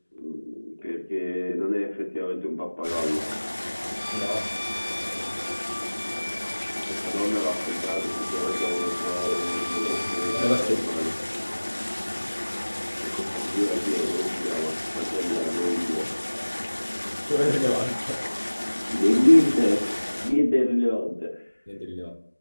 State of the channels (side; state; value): both; inverted; correlation -1.00